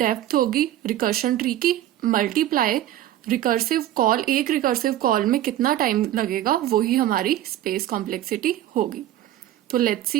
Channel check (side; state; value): left; quieter; 13.0 dB